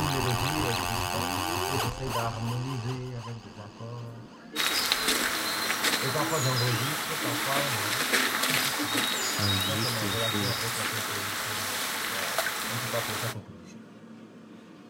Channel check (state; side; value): identical; both; correlation 1.00